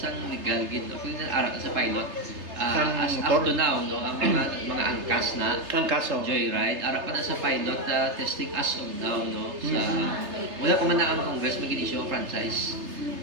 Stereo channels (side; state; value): left; late; 3.3 ms